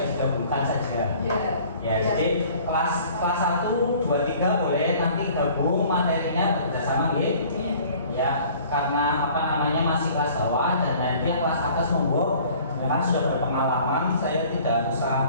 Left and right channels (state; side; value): inverted; both; correlation -0.51